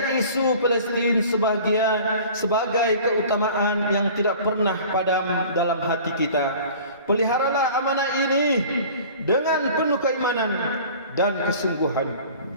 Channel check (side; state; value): both; inverted; correlation -0.44